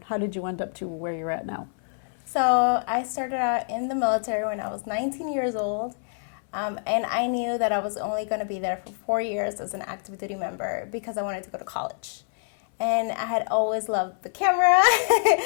how did you end up to where you're at now? So I started out in the military when I was 19 years old. And I knew that I was only going to be there for 4 years as an active duty member because I wanted to go to college. And I had always loved the camera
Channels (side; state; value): right; silent; 61 dB below the other